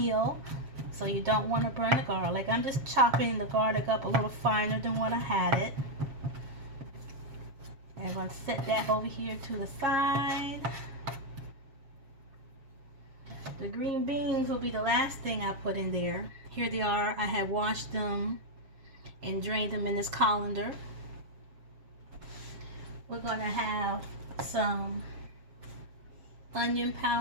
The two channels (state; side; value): late; left; 7.4 ms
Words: so you don't want to burn the garlic. I'm just chopping the garlic up a little finer than what I had it. And I'm going to set that over here to the side. The green beans will be the last thing I put in there. Here they are. I have washed them and drained them in this colander. We're going to have some onion